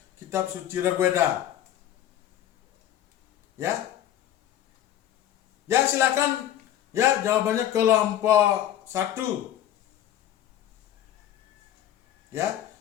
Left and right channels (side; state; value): right; quieter; 11.5 dB